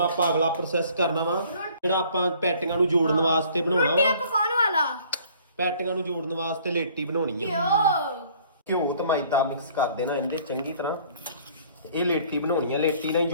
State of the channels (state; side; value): inverted; both; correlation -0.56